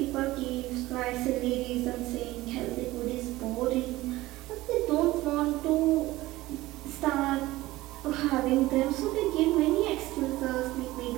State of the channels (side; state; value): left; quieter; 18.0 dB